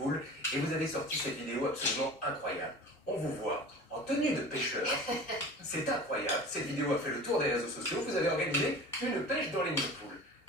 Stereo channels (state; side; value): normal; both; correlation 0.38